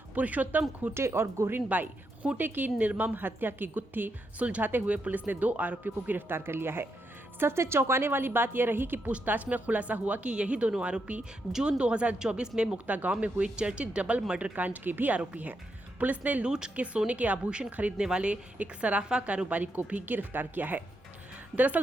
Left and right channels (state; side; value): normal; both; correlation 0.82